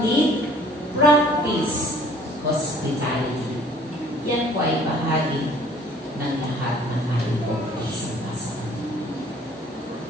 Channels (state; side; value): normal; both; correlation 0.54